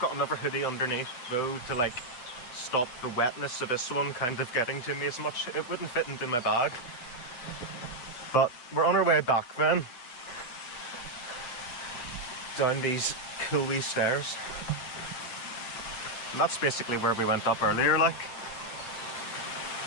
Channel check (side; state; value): right; late; 8.3 ms